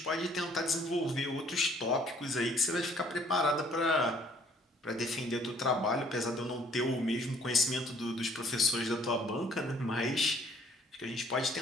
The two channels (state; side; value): normal; both; correlation 0.60